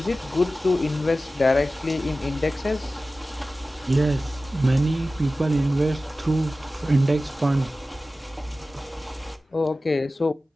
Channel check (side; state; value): both; normal; correlation 0.95